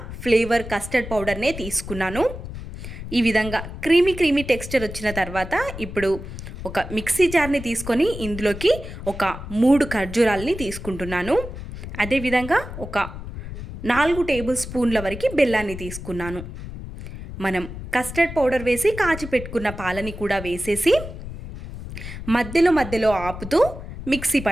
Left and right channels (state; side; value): noise; left; rumble, 10 dB below the sound